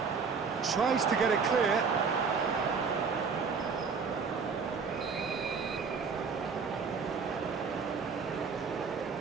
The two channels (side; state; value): left; quieter; 5.4 dB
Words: Tries to get it clear.